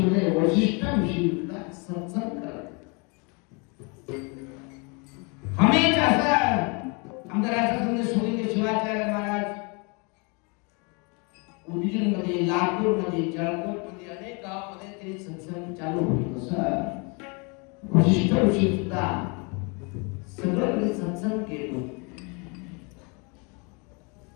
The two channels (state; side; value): quieter; right; 32.1 dB